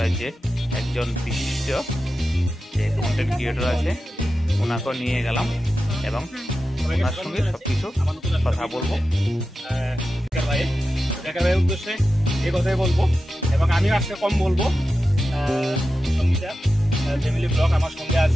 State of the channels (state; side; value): normal; both; correlation 0.92